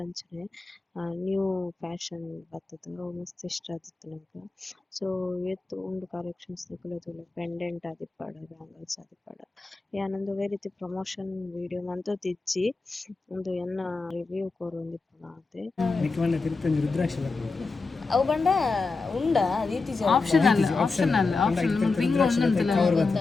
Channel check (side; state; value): right; quieter; 3.9 dB